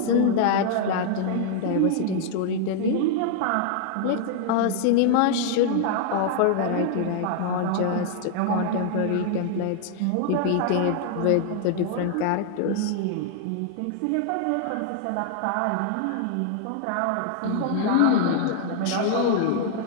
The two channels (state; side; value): different; both; correlation 0.00